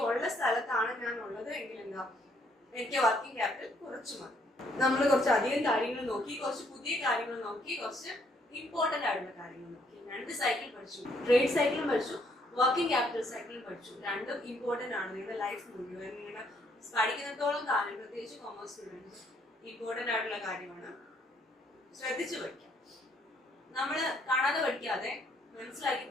ഉള്ള സ്ഥലത്താണ് ഞാൻ ഉള്ളത് എങ്കിൽ എന്താ എനിക്ക് വർക്കിംഗ് ക്യാപിറ്റൽ കുറച്ച് മതി. നമ്മൾ കുറച്ച് അധികം കാര്യങ്ങൾ നോക്കി, കുറച്ച് പുതിയ കാര്യങ്ങൾ നോക്കി, കുറച്ച് ഇമ്പോർട്ടന്റ് ആയിട്ടുള്ള കാര്യങ്ങൾ നോക്കി. 2 സൈക്കിൾ പഠിച്ചു, ട്രേഡ് സൈക്കിളും പഠിച്ചു, വർക്കിംഗ് ക്യാപിറ്റൽ സൈക്കിളും പഠിച്ചു. രണ്ടും ഇമ്പോർട്ടന്റ് ആണ് നിങ്ങളുടെ ലൈഫ് മുഴുവൻ. നിങ്ങളുടെ പഠിക്കുന്നിടത്തോളം കാലം, പ്രത്യേകിച്ച് കോമേഴ്സ് സ്റ്റുഡൻസ്, ഇമ്പോർട്ടന്റ് ആയിട്ടുള്ള കാര്യമാണ്. ശ്രദ്ധിച്ചു പഠിക്കാം. നമ്മൾ കാണാതെ പഠിക്കാതെ മനസ്സിലാക്കി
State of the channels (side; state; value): both; normal; correlation 0.68